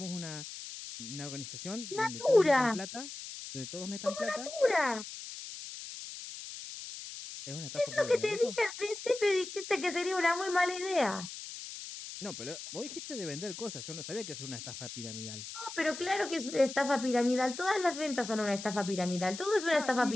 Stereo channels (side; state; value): left; noise; hiss, 10 dB below the sound